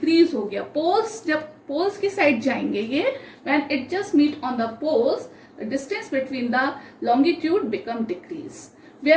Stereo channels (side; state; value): both; identical; correlation 1.00